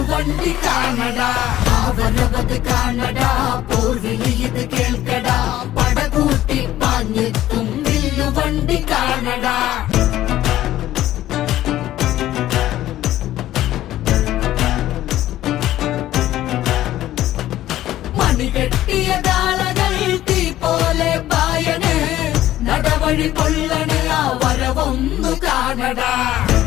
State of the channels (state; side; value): quieter; right; 13.8 dB